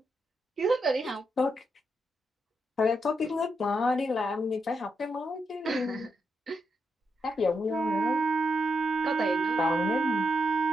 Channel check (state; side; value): normal; both; correlation 0.82